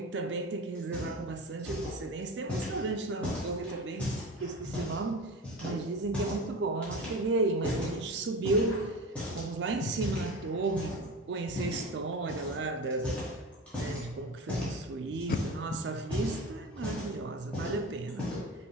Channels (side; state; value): both; normal; correlation 0.30